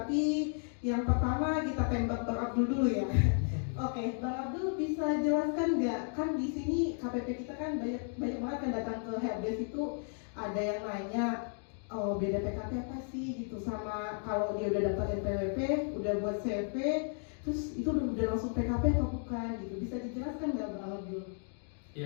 yang pertama kita tembak Bang Abdul dulu ya. Oke, Bang Abdul bisa jelaskan nggak? Kan di sini KPP kita kan banyak banget kan datang ke helpdesk itu ada yang nanya, oh beda PKP apa sih gitu, sama kalau dia udah daftar NPWP, udah buat CV, terus itu udah langsung PKP atau bukan gitu. Bisa dijelaskan nggak Bang Abdul?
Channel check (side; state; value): right; silent; 55 dB below the other